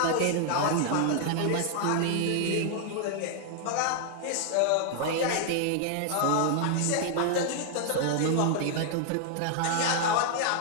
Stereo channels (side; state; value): both; different; correlation 0.00